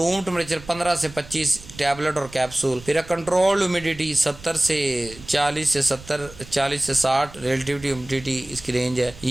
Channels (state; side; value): noise; right; rumble, 19 dB below the sound